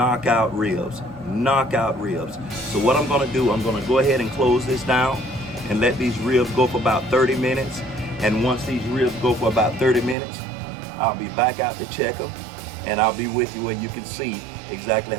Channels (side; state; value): left; drops out; at 10.2 s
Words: ribs. So what I'm going to do, I'm going to go ahead and close this down and let these ribs go for about 30 minutes. And once these ribs go for about 30 minutes, I'll be back out to check them, and I'll be with you where you can see exactly